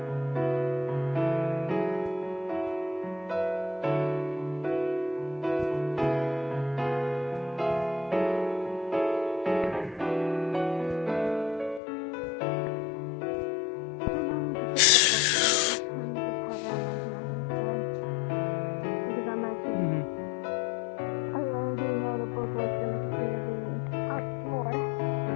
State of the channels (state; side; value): drops out; right; at 11.8 s